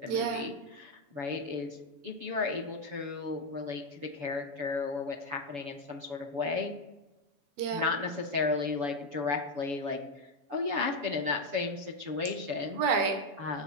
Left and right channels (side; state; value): left; late; 7.1 ms